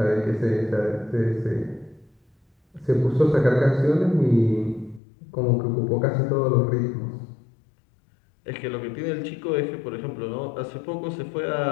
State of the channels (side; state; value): right; drops out; at 5.0 s